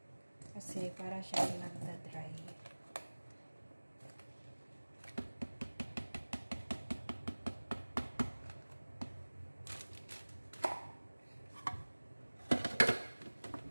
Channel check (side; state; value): both; inverted; correlation -1.00